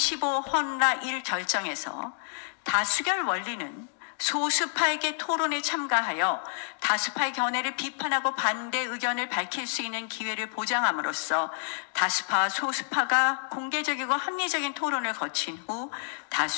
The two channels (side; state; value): right; silent; digital silence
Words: 헌라 1 결정에서 다수결 원리는 소수파에게 토론에 참가하여 다수파의 견해를 비판하고 반대 의견을 밝힐 수 있는 기회를 보장함으로써 다수파와 소수파가 공개적이고 합리적인 토론을 거친 후